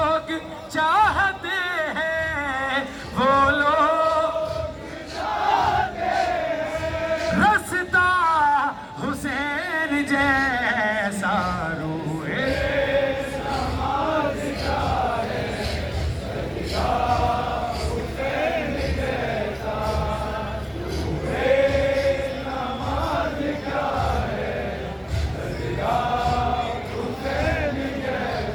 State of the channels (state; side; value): identical; both; correlation 1.00